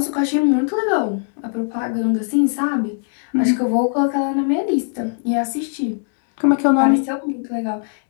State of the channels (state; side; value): silent; right; digital silence